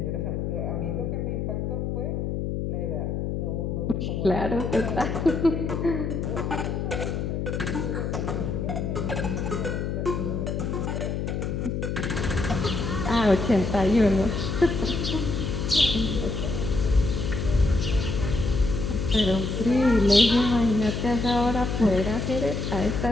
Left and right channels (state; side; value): noise; left; hum, 2 dB below the sound